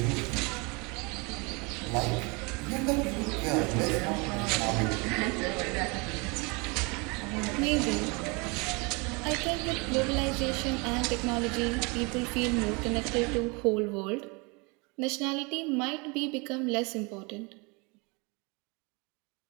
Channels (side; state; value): left; quieter; 29.2 dB